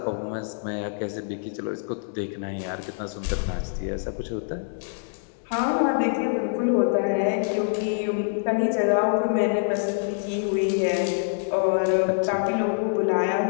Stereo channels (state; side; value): silent; right; digital silence